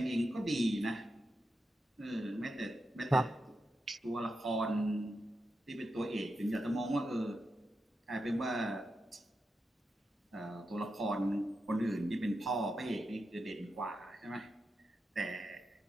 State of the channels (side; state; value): both; normal; correlation 0.87